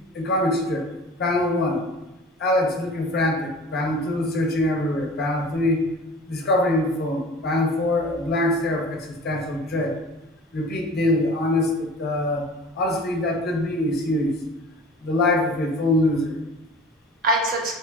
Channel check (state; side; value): normal; both; correlation 0.42